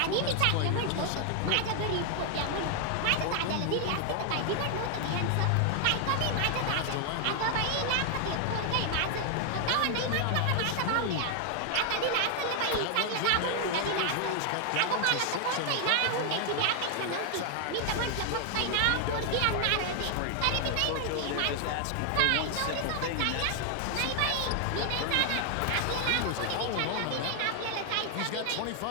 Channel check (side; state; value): both; different; correlation 0.00